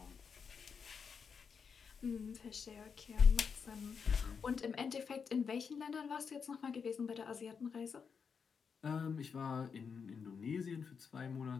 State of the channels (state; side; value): quieter; right; 6.1 dB